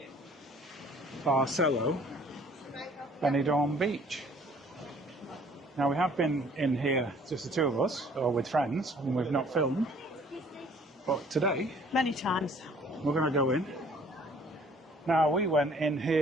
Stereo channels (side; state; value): both; normal; correlation 0.56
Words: Barcelo Benidorm Beach. Now we have been in here, just the two of us, or with friends, and we've not filmed. But today, many times, we're going to go in. Now we went in